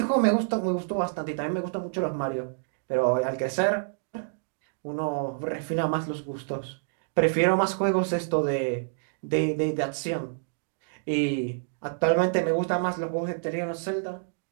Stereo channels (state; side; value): silent; left; digital silence